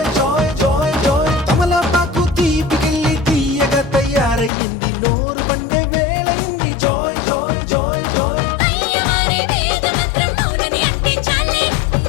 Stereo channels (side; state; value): right; drops out; at 4.5 s